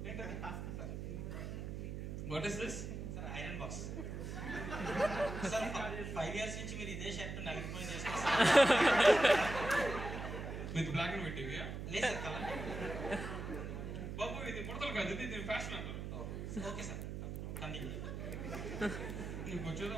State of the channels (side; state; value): right; noise; hum, 6 dB below the sound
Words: What is this? Sir, iron box. Sir, 5 years నుంచి మీరు ఇదే షర్ట్ నలిగిపోయి చేసుకొస్తారు. విత్ బ్లాక్ అండ్ వైట్ టీవీయా? లేదు సార్, కలర్. బాబు, ఇది ముడతలు కాదు, ఇది ఫ్యాషన్ అంటారు. Okay sir, continue. నీకు వచ్చేదో